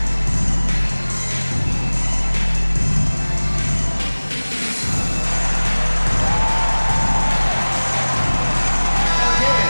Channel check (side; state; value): both; inverted; correlation -1.00